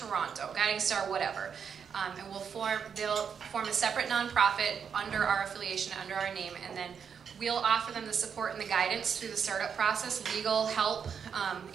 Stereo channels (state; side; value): quieter; left; 7.0 dB